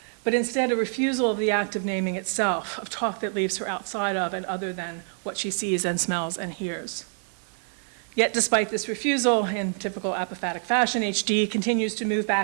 but instead a refusal of the act of naming itself, of talk that leaves her outside of and other than what she sees and smells and hears. Yet despite this refusal, in typical apophatic fashion, H.D. continues to move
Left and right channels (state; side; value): silent; left; 57 dB below the other